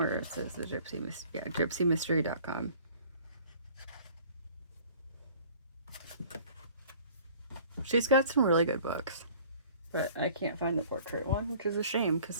it says the gypsymystery.com. She's got some really good books, but I can't find the portrait one, which is a shame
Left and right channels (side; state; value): both; inverted; correlation -0.51